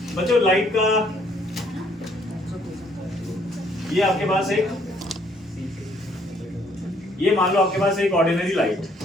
बच्चों लाइट का, ये आपके पास एक, ये मान लो आपके पास एक ऑर्डिनरी लाइट,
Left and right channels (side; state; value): both; normal; correlation 0.65